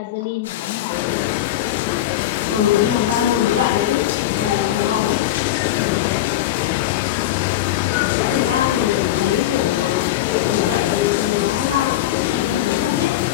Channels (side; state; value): right; quieter; 13.2 dB